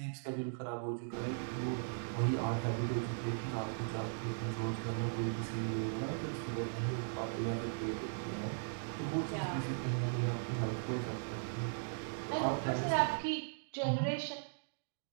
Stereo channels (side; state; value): left; silent; digital silence